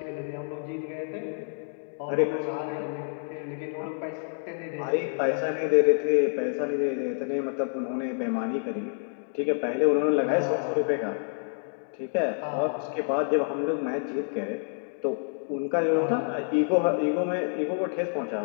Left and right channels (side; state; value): right; silent; digital silence